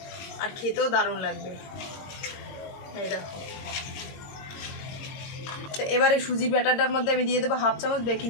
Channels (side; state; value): right; late; 22 ms